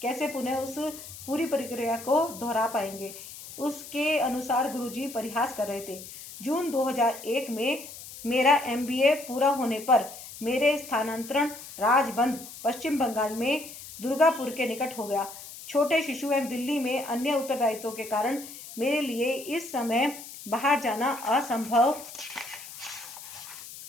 कैसे पुनः उस पूरी प्रक्रिया को दोहरा पाएंगे। उसके अनुसार गुरुजी परिहास कर रहे थे। जून 2001 में मेरा MBA पूरा होने पर मेरे स्थानांतरण राजबंद पश्चिम बंगाल में दुर्गापुर के निकट हो गया। छोटे शिशु एवं दिल्ली में अन्य उत्तरदायित्वों के कारण मेरे लिए इस समय बाहर जाना असंभव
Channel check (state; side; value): noise; left; hiss, 14 dB below the sound